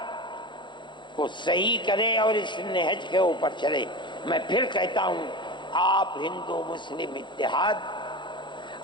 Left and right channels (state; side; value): late; right; 0.23 ms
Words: کو صحیح کرے اور اس نہج کے اوپر چلے۔ میں پھر کہتا ہوں، آپ ہندو مسلم اتحاد،